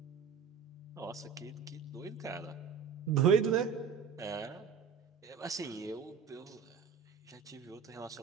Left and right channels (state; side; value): quieter; left; 6.5 dB